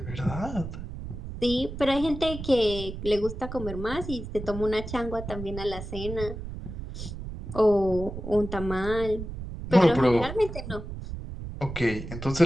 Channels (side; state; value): right; noise; rumble, 9 dB below the sound